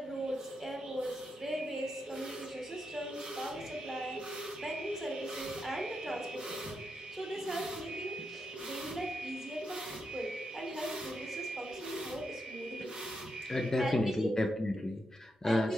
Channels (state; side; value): normal; both; correlation 0.84